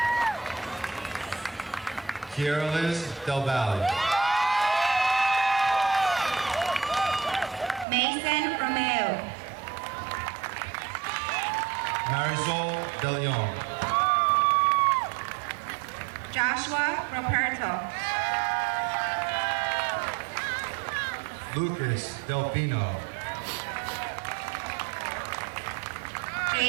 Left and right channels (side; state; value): left; drops out; at 7.9 s